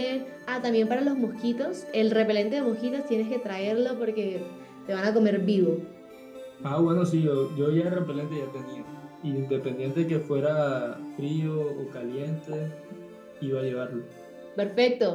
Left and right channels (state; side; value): identical; both; correlation 1.00